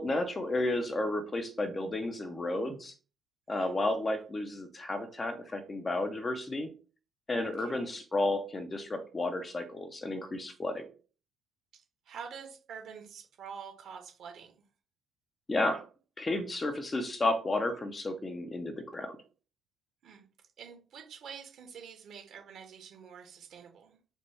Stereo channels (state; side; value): normal; both; correlation 0.85